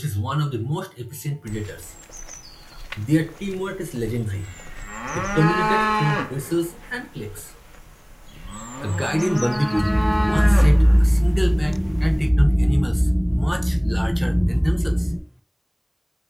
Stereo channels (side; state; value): both; identical; correlation 1.00